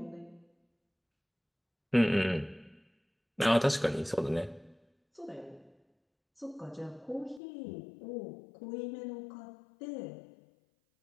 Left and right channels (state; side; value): drops out; right; at 7.4 s